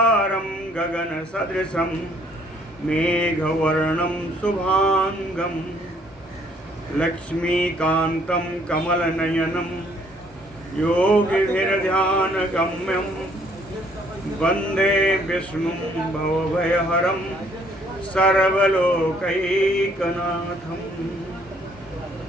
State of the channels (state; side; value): normal; both; correlation 0.63